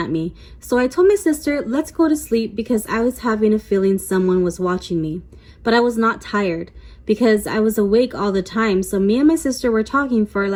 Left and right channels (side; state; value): both; identical; correlation 1.00